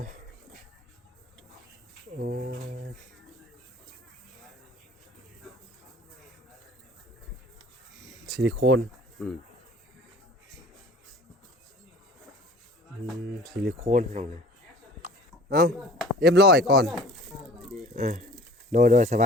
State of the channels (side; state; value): both; normal; correlation 0.46